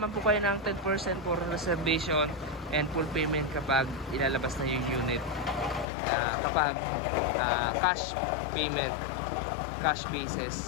po kayo ng 10% for reservation and full payment kapag ilalabas na yung unit. Kapag cash payment, cash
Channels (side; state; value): right; drops out; at 5.9 s